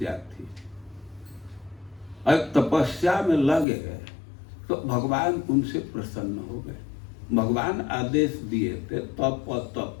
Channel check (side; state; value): right; drops out; at 3.7 s